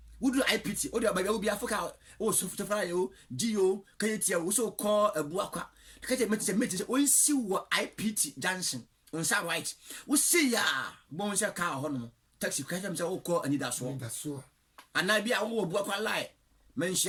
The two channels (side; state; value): both; identical; correlation 1.00